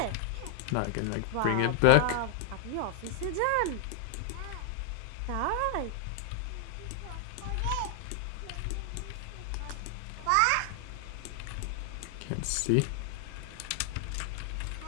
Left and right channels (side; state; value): both; different; correlation 0.00